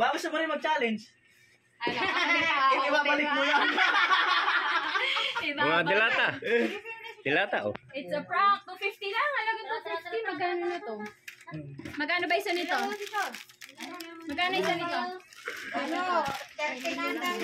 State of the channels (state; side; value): identical; both; correlation 1.00